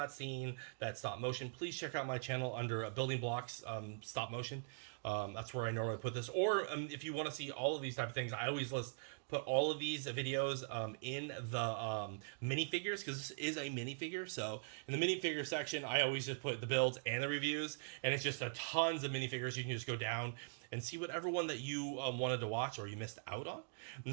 seen that stop motion, please check out my channel under Building Blocks stop motion. That's where I normally put this. Or if you want to see all of these type of things, I always put all of these videos in the minifigures, because this is a minifigure. So in the minifigure section, I always just put the builds and the reviews, and it's just tons of minifigures. You can just go down and see whatever one that you wanted to watch or you missed out on.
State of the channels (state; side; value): silent; left; digital silence